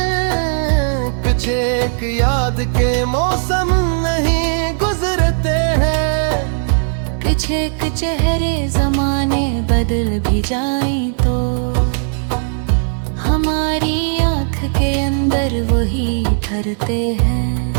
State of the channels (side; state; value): left; silent; 64 dB below the other